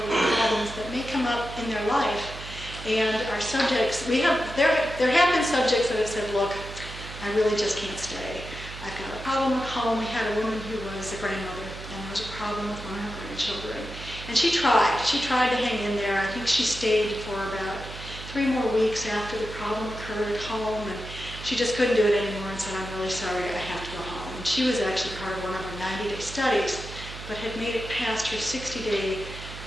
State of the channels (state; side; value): noise; right; hum, 12 dB below the sound